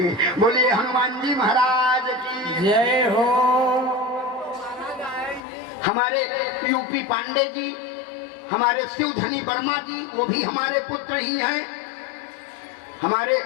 बोलिए हनुमान जी महाराज की जय हो। हमारे यूपी पांडे जी, हमारे शिवधनी वर्मा जी, वो भी हमारे पुत्र ही हैं। हमारे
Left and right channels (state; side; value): drops out; right; at 5.5 s